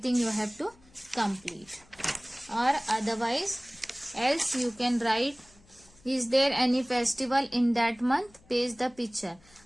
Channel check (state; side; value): noise; left; hum, 28 dB below the sound